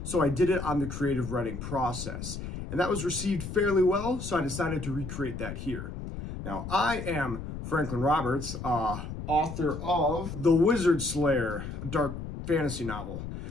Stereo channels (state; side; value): noise; left; rumble, 8 dB below the sound